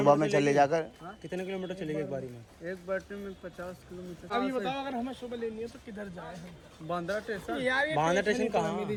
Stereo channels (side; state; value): both; identical; correlation 1.00